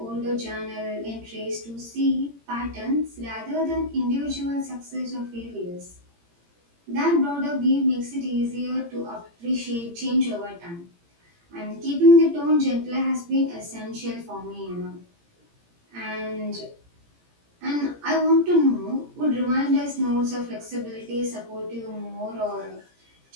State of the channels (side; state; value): left; late; 17 ms